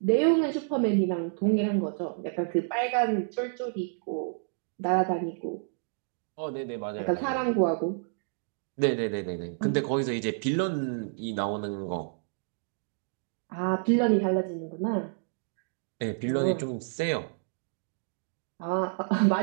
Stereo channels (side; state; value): left; silent; digital silence